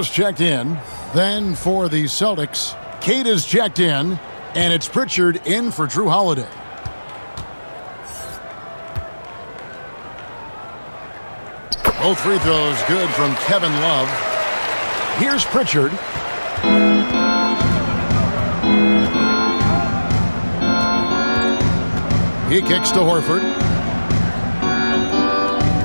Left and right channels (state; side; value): inverted; both; correlation -1.00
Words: checked in. Then for the Celtics, Kate is checked in. And it's Pritchard in for Drew Holiday. Both free throws good from Kevin Love. Here's Pritchard. He kicks to Horford.